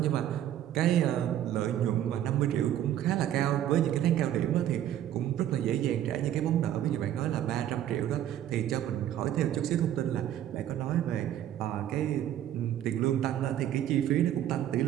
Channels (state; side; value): quieter; left; 11.5 dB